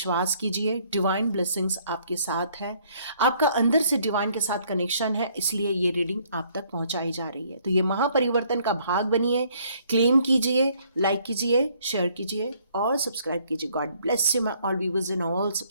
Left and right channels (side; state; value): both; inverted; correlation -0.64